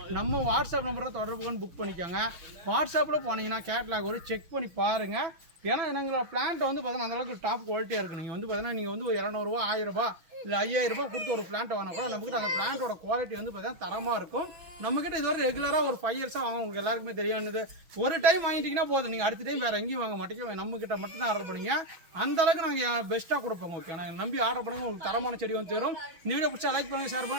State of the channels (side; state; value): left; late; 6.1 ms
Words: நம்ம வாட்ஸ்அப் நம்பரில் தொடர்பு கொண்டு புக் பண்ணிக்கோங்க. வாட்ஸ்அப்பில் போனீங்கன்னா கேட்லாக் ஒரு செக் பண்ணி பாருங்கள். ஏன்னா எங்களோட பிளான்ட் வந்து பார்த்தீங்கன்னா அந்தளவுக்கு டாப் குவாலிட்டியாக இருக்குது. நீங்கள் வந்து பார்த்தீங்கன்னா நீங்கள் வந்து ஒரு 200 ரூபா 1000 ரூபா இல்லை 5000 ரூபாய் கொடுத்து ஒரு பிளான்ட் வாங்கினா கூட நம்மக்கிட்ட அந்த பிளான்ட்டோட குவாலிட்டி வந்து பார்த்தீங்கன்னா தரமாக இருக்கும். நம்மக்கிட்ட இதுவரை ரெகுலராக ஒரு 5 இயர்ஸாக வாங்க உங்களுக்கு எல்லாருக்குமே தெரியானது. ஒரு டைம் வாங்கிட்டீங்கன்னா போதும், நீங்கள் அடுத்த டைம் வேறு எங்கேயும் வாங்க மாட்டீங்க, நம்மக்கிட்ட மட்டும் தான் ஆர்டர் பண்ணிங்க. அந்தளவுக்கு நாங்கள் பெஸ்ட்டாக கொடுப்போம். ஓகே, நாங்கள் நம்பி ஆர்டர் பண்ணுங்க, உங்களுக்கு தரமான செடி வந்து தரும். இந்த வீடியோ பிடிச்சா லைக் பண்ணுங்கள், ஷேர்